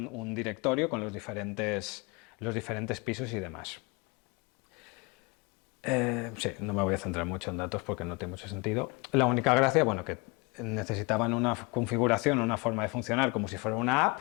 directorio con los diferentes pisos y demás. Sí, no me voy a centrar mucho en datos porque no tiene mucho sentido. La única gracia, bueno, que necesitaban una configuración, una forma de funcionar como si fuera una app,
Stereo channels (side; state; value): right; quieter; 28.2 dB